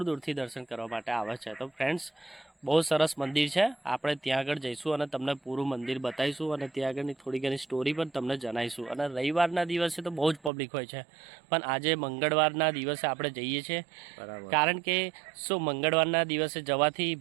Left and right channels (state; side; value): drops out; left; at 10.5 s